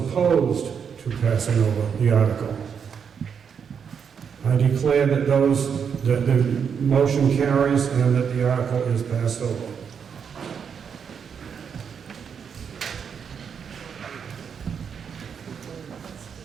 to passing over the article. I declare that that the motion carries and that the article is passed over.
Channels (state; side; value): quieter; left; 7.0 dB